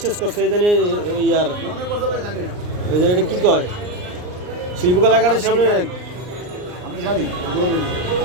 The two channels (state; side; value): late; left; 39 ms